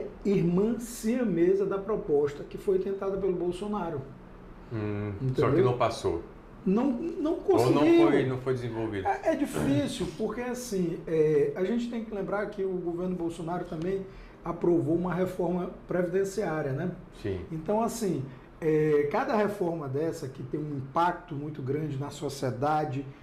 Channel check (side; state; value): both; identical; correlation 1.00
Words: irmã siamesa da proposta que foi tentada pelo Bolsonaro. Só que não passou. Não conseguiu. Ou não foi desenvolvido. É difícil, porque assim, a gente tem que lembrar que o governo Bolsonaro também aprovou uma reforma previdenciária, né? Sim. Então, assim, cada reforma dessa que tem um impacto muito grande na sociedade,